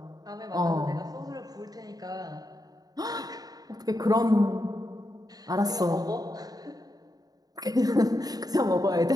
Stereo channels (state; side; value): late; left; 0.18 ms